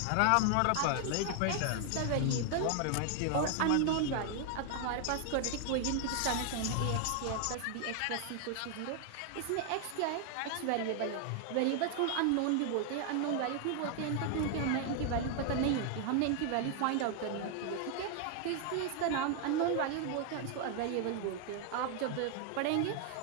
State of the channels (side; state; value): both; different; correlation 0.00